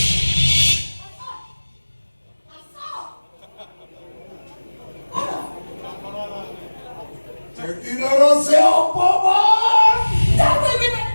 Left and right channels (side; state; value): both; inverted; correlation -1.00